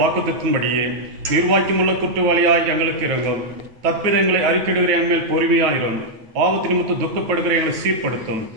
வாக்குத்தத்தின்படியே நிர்வாகியமுள்ள குற்றவாளியாய் எங்களுக்கு இறங்கும். தப்பிதங்களை அறிக்கையிடுகிற எங்கள் பொறுமையாயிரும். பாவத்தின் நிமித்தம் துக்கப்படுகிற எங்களை சீர்படுத்தும்.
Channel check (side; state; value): left; late; 9.1 ms